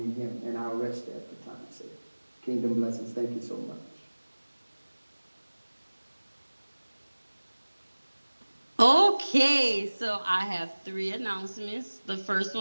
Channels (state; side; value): inverted; both; correlation -1.00